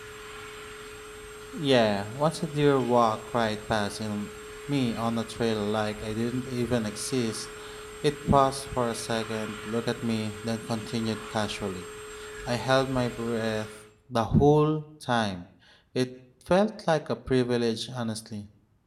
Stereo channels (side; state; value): both; identical; correlation 1.00